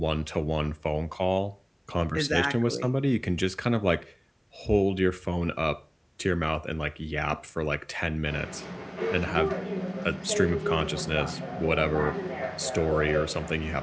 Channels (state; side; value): identical; both; correlation 1.00